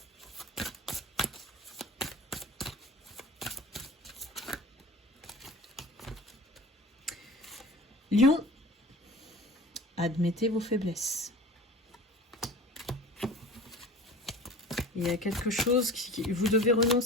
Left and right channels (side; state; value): both; normal; correlation 0.39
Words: Lion, admettez vos faiblesses. Il y a quelque chose vous devez